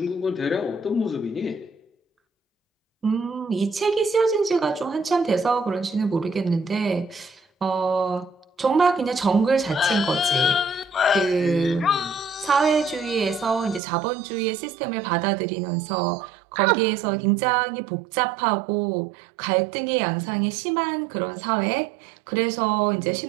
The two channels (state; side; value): drops out; left; at 13.8 s